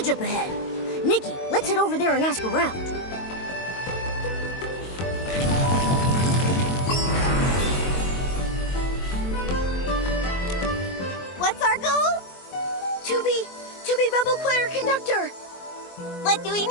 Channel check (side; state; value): right; late; 22 ms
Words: up ahead. Nikki, let's head over there and ask around. What's our goal? To be Bubble Choir Conductor. What do we